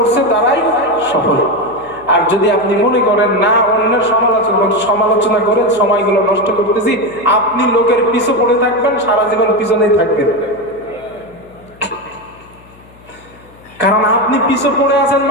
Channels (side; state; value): left; noise; hum, 26 dB below the sound